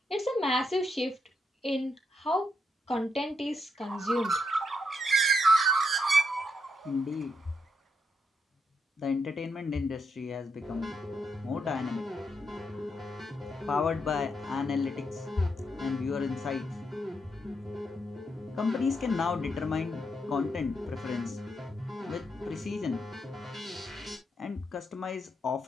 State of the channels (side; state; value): both; normal; correlation 0.80